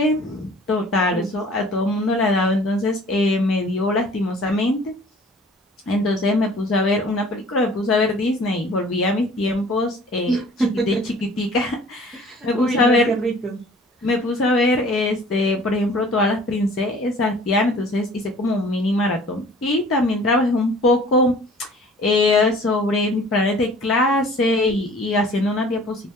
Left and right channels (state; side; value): normal; both; correlation 0.50